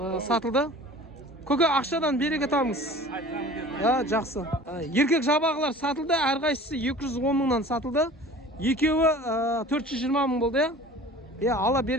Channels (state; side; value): normal; both; correlation 0.43